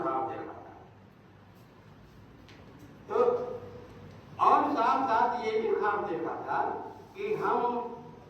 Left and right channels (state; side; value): identical; both; correlation 1.00